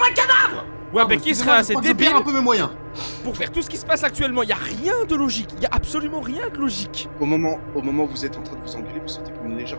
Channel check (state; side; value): inverted; both; correlation -1.00